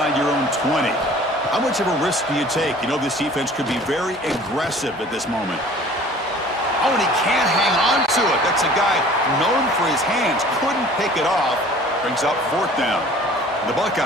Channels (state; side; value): normal; both; correlation 0.48